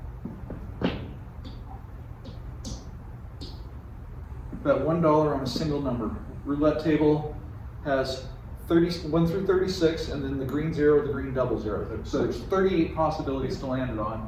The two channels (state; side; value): identical; both; correlation 1.00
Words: bet $1 on a single number. Roulette table has 1 through 36, and then the green 0, the green double 0. So there's 38 possibilities to land it on.